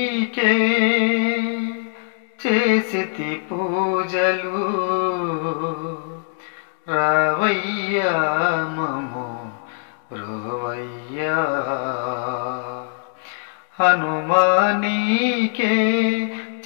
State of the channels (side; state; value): right; silent; digital silence